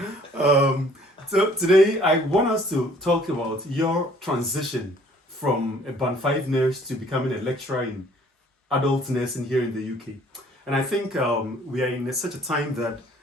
So today I want us to talk about your transition from a Band 5 nurse to becoming a lecturer in adult nursing here in the UK. And I think we are in such a time that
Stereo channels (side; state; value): both; normal; correlation 0.57